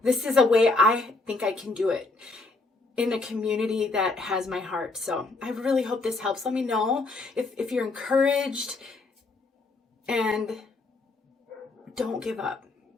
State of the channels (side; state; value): right; quieter; 3.4 dB